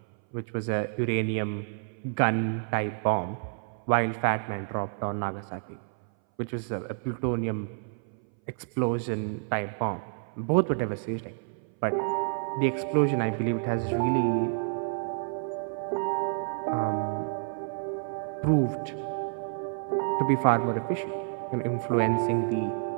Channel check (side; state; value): left; silent; 58 dB below the other